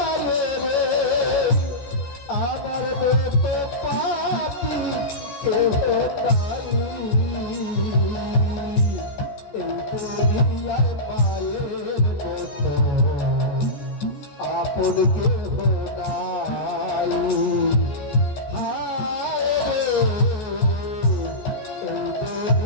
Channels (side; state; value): right; late; 14 ms